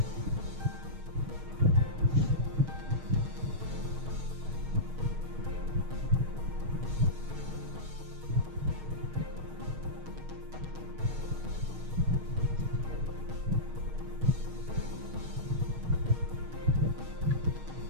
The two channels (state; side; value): late; left; 6.4 ms